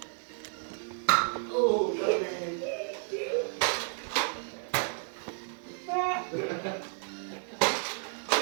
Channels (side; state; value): left; silent; 57 dB below the other